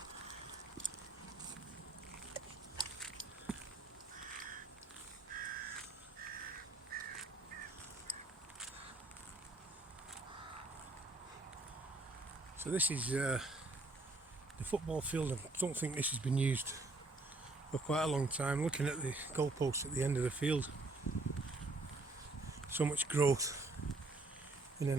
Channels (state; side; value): quieter; left; 3.1 dB